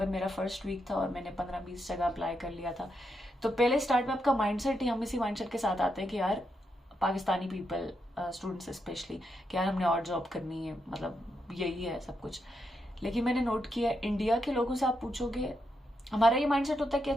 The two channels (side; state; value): both; normal; correlation 0.82